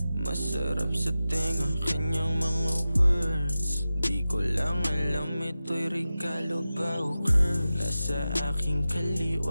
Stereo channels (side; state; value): both; inverted; correlation -0.94